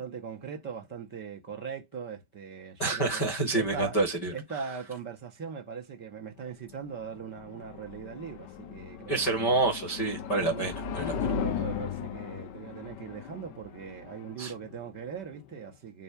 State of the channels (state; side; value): late; right; 5.1 ms